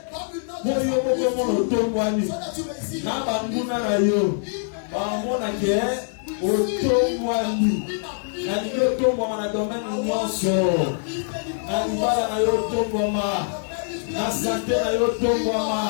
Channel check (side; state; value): right; silent; digital silence